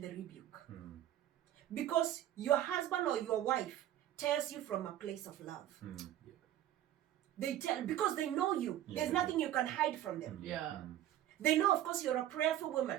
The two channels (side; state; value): left; quieter; 12.5 dB